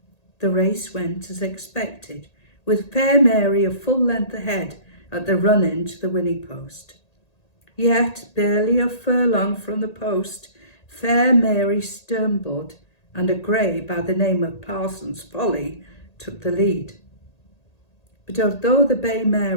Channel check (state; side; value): late; right; 1.8 ms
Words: The race went as expected, with Fair Mary a full length ahead at the run-in to the winning post. Yet, barely a furlong from the post, Fair Mary stumbled, and a grey by the name of Parsons Folly took the lead. But although the bay mare